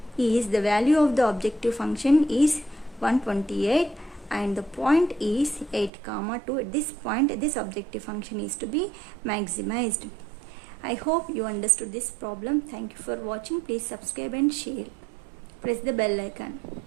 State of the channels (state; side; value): drops out; left; at 5.9 s